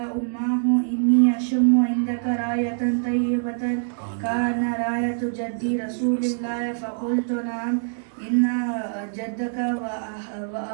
أمه إني أشم عندك راية طيبة كان راية جدي رسول الله. فقلت نعم إن جدك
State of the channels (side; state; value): left; silent; digital silence